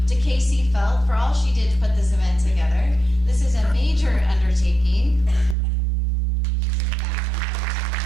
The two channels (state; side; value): drops out; left; at 5.6 s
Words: to Casey Felt for all she did to put this event together. This is a major undertaking.